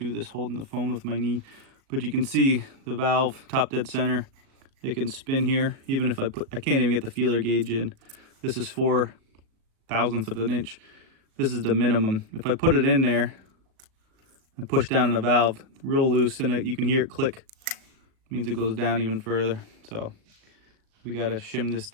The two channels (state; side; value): late; left; 37 ms